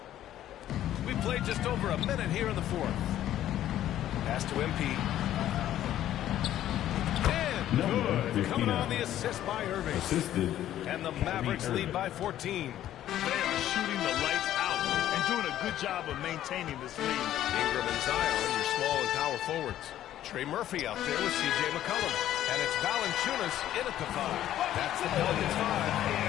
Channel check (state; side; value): quieter; right; 12.3 dB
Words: We played just over a minute here in the fourth. Pass to MP. And good. Coming on the assist by Irving. Assisted. And the Mavericks lead by 14. They are shooting the lights out and doing a good job of maintaining this lead. Ingram and Zion, your small and power forwards. Trey Murphy out there with C.J. McCollum. And it's Valanciunas in at the 5. That's the Pelicans 5.